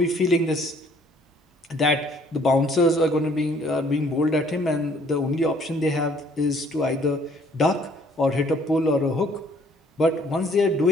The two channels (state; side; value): normal; both; correlation 0.60